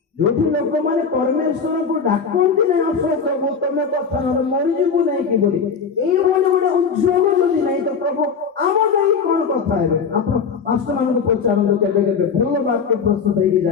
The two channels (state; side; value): quieter; right; 5.9 dB